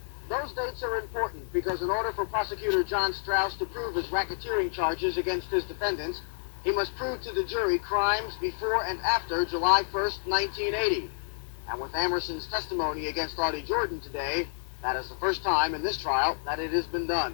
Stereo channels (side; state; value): right; silent; digital silence